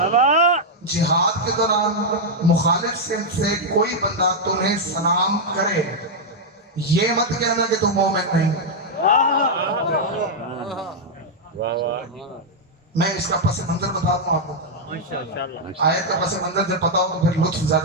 جہاد کے دوران مخالف سمت سے کوئی بندہ تمہیں سلام کرے، یہ مت کہنا کہ تم مومن نہیں۔ میں اس کا پس منظر بتاتا ہوں آپ کو، آیت کا پس منظر جب پتا ہو تو پھر لطف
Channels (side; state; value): both; normal; correlation -0.03